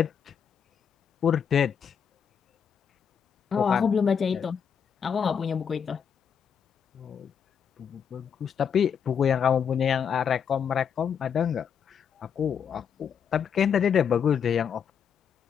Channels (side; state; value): right; quieter; 7.4 dB